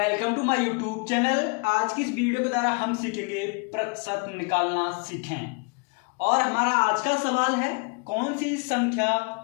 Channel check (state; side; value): quieter; right; 32.9 dB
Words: to my YouTube channel. आज की इस वीडियो के द्वारा हम सीखेंगे प्रतिशत निकालना सीखें। और हमारा आज का सवाल है, कौन सी संख्या